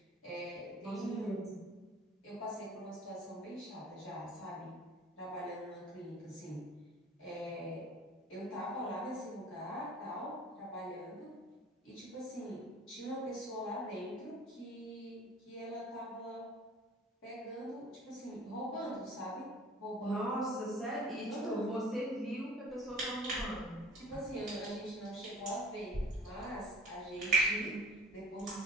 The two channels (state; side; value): normal; both; correlation 0.47